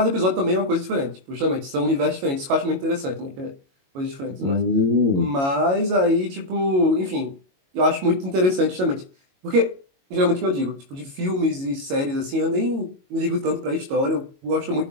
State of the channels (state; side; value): late; left; 22 ms